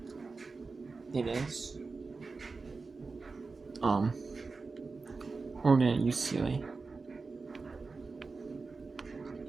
It is Oregon and UCLA.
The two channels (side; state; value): left; quieter; 4.2 dB